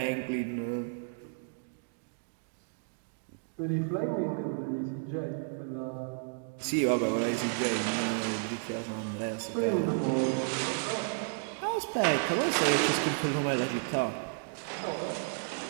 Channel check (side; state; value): left; silent; digital silence